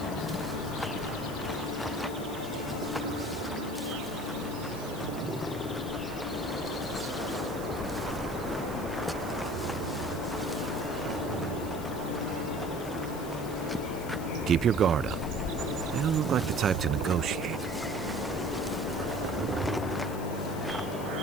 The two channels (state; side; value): noise; left; hiss, 15 dB below the sound